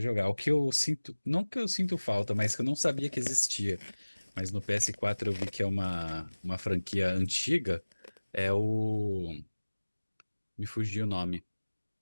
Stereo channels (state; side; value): inverted; both; correlation -1.00